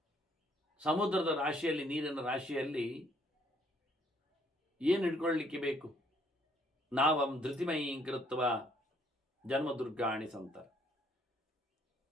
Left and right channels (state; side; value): normal; both; correlation 0.66